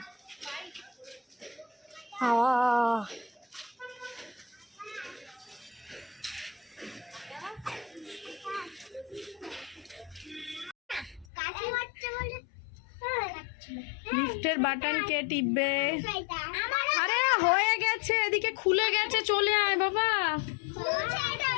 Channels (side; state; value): right; drops out; at 11.2 s